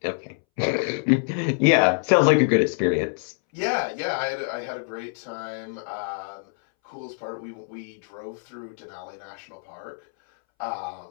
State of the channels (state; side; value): silent; right; 61 dB below the other